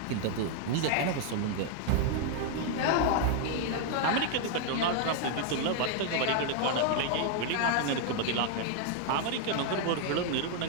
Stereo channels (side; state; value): both; different; correlation 0.00